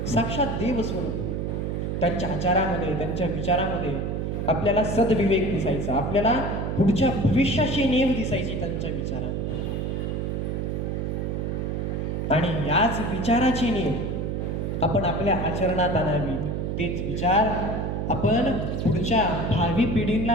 साक्षात देव स्वरूप. त्यांच्या आचारामध्ये, त्यांच्या विचारामध्ये आपल्याला सद्विवेक दिसायचा, आपल्याला पुढच्या भविष्याची नेव दिसायची त्यांच्या विचारामध्ये. आणि याच विचाराची नेव आपण आपल्या आचरणात आणावी. तेच विचार आपण पुढच्या भावी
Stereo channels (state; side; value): noise; right; hum, 1 dB below the sound